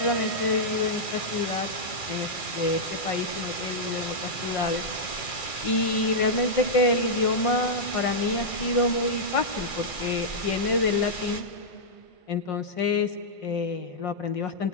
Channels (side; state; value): right; late; 1.5 ms